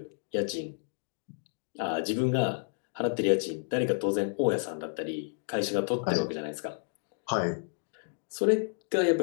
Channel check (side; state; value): right; silent; 57 dB below the other